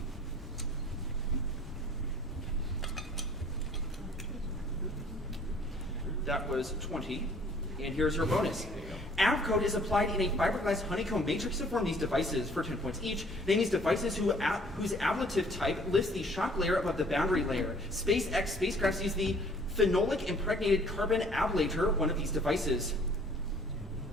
That was 20. And here's your bonus. Avcode is applied in a fiberglass honeycomb matrix to form these devices for 10 points each. Name these devices whose ablative type lifts the shock layer above the boundary layer. SpaceX spacecrafts use the phenolic impregnated carbon ablator, one of these devices.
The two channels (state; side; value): normal; both; correlation 0.56